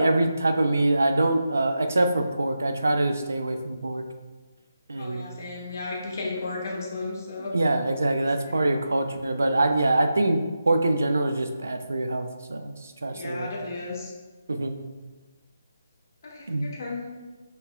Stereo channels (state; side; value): inverted; both; correlation -0.89